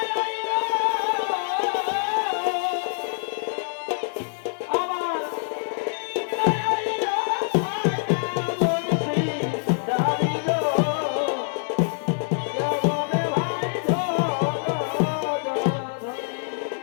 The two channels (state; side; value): silent; right; 61 dB below the other